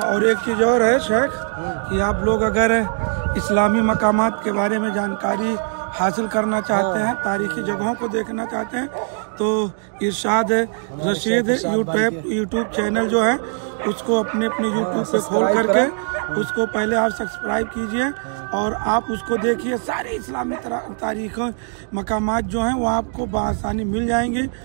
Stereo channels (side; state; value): left; silent; 65 dB below the other